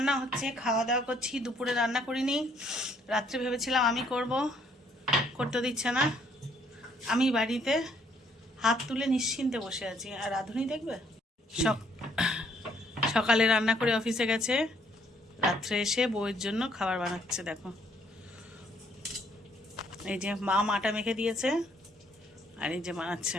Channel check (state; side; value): normal; both; correlation 0.66